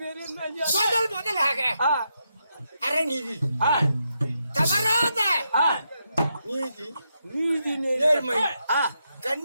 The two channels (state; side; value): inverted; both; correlation -0.83